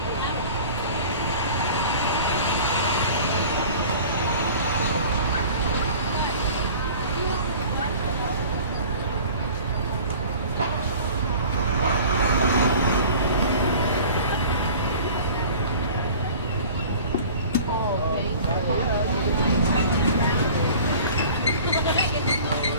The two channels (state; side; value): inverted; both; correlation -0.43